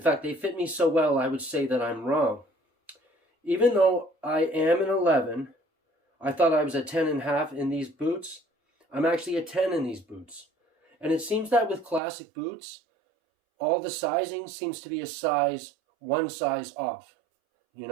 they fit me so well, I would say that I'm wrong. Even though I am an 11, I thought I was a 10.5 in these boots. I'm actually a 10 in these boots. And it seems that with classic boots, all the sizing seems to be one size off, you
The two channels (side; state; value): left; drops out; at 12.0 s